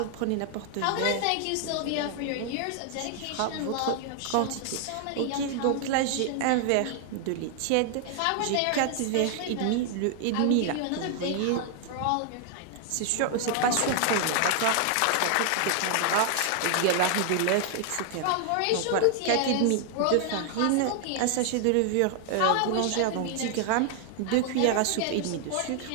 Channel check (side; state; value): both; different; correlation 0.00